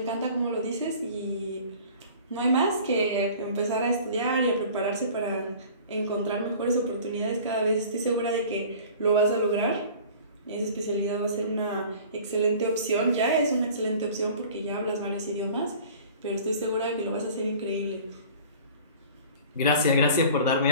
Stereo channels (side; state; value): both; inverted; correlation -0.45